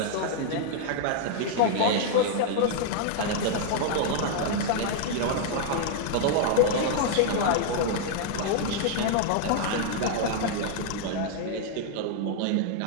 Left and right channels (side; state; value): both; different; correlation 0.00